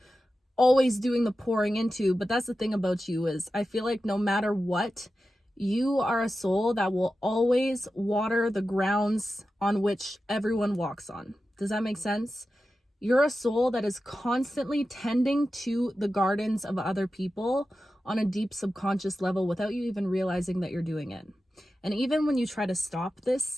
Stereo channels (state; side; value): normal; both; correlation 0.92